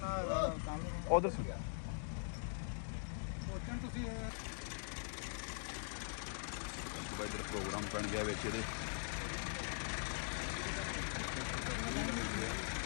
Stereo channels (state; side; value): silent; right; digital silence